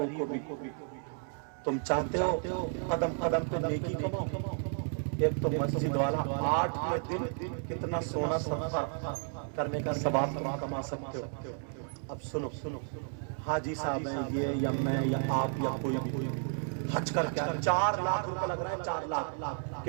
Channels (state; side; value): silent; left; 56 dB below the other